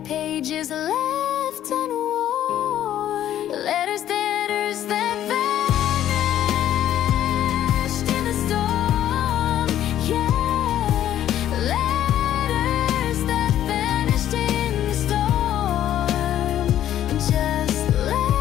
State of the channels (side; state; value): right; quieter; 11.7 dB